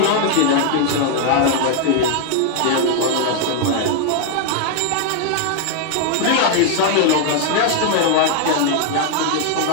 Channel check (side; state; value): both; different; correlation 0.00